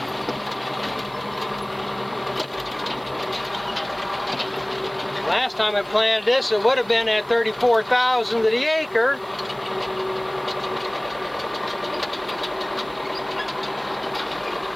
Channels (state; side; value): noise; right; hiss, 26 dB below the sound